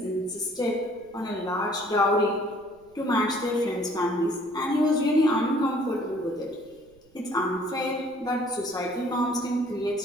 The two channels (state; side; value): noise; right; rumble, 30 dB below the sound